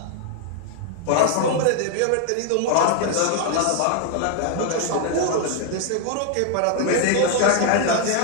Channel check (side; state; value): both; different; correlation 0.00